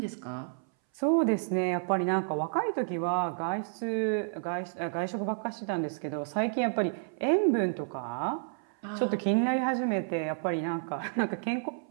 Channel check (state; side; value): silent; left; 57 dB below the other